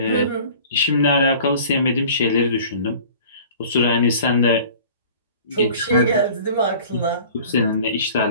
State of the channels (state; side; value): inverted; both; correlation -0.45